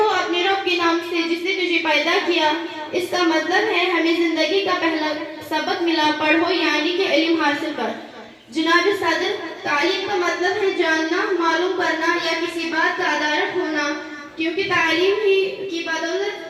اپنے رب کے نام سے جس نے تجھے پیدا کیا۔ اس کا مطلب ہے ہمیں زندگی کا پہلا سبق ملا، پڑھو یعنی کہ علم حاصل کر۔ جناب صدر، تعلیم کا مطلب ہے جاننا، معلوم کرنا یا کسی بات کا ادارک ہونا، کیونکہ تعلیم ہی کی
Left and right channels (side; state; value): both; identical; correlation 1.00